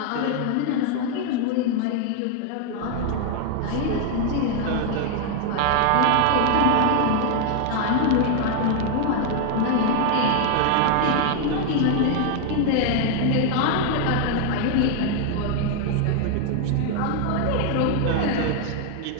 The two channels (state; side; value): different; both; correlation 0.00